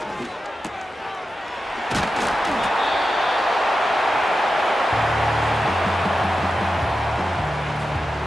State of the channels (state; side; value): normal; both; correlation 0.91